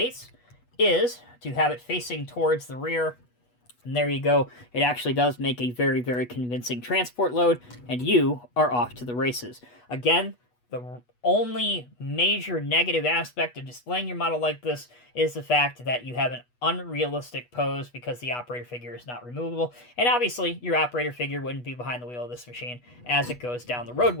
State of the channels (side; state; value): right; late; 8.2 ms